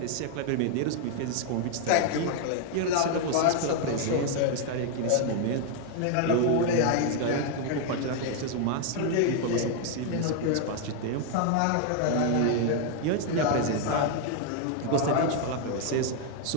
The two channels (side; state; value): both; different; correlation 0.00